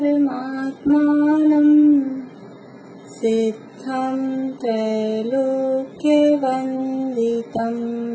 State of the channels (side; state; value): both; identical; correlation 1.00